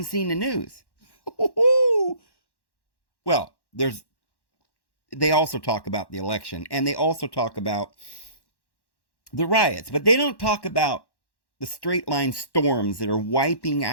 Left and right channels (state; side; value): late; right; 1.1 ms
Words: seen the news. Well, they also talk about the election, and they also talk about the riots, but they don't talk about the straight line storms that are wiping